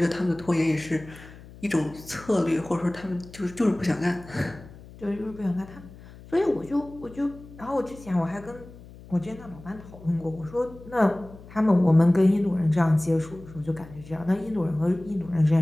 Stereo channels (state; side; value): noise; left; hum, 19 dB below the sound